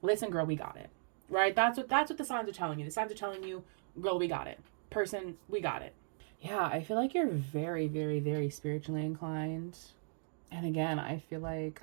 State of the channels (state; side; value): silent; left; digital silence